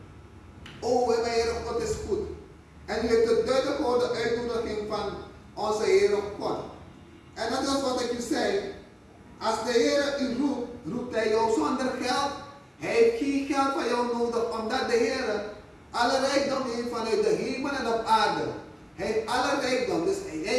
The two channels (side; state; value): both; identical; correlation 1.00